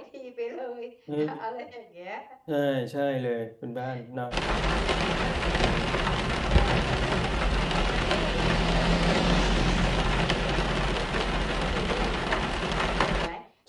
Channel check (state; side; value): identical; both; correlation 1.00